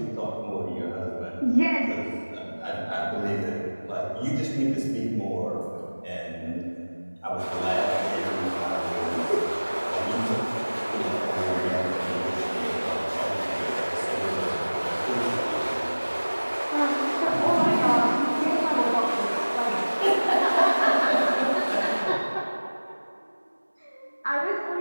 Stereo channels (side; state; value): both; inverted; correlation -1.00